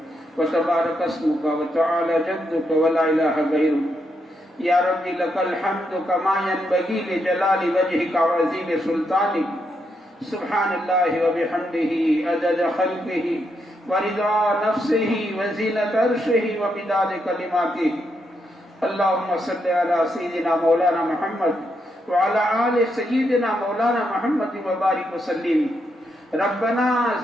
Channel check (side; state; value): both; normal; correlation 0.80